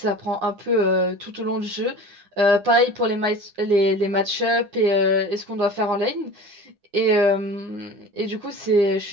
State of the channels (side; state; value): left; late; 9.9 ms